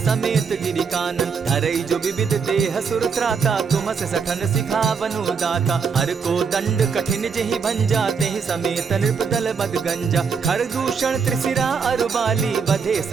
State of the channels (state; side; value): quieter; left; 5.8 dB